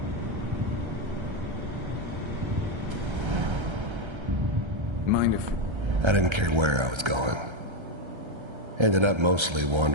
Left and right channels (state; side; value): late; left; 1.3 ms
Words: Mind if... I didn't care where I was going. Ended up mostly